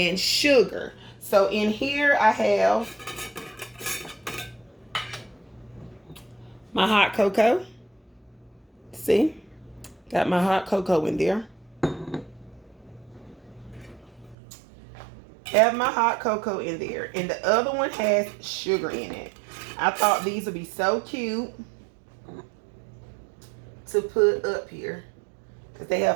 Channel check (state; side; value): drops out; left; at 14.4 s